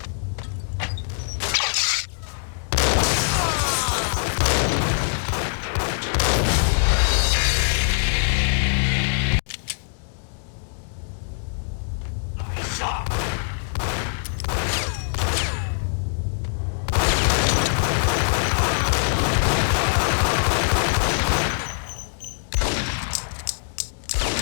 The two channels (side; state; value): right; silent; digital silence